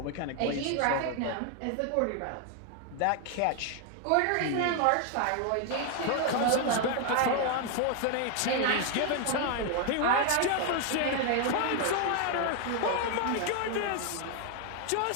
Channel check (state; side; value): different; both; correlation 0.00